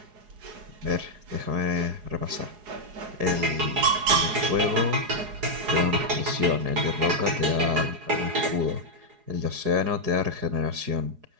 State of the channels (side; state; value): left; late; 4.8 ms